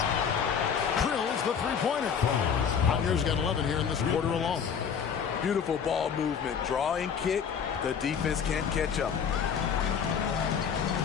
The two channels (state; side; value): quieter; right; 7.2 dB